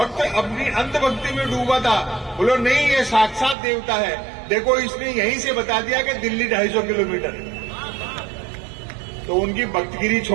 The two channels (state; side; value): drops out; left; at 3.6 s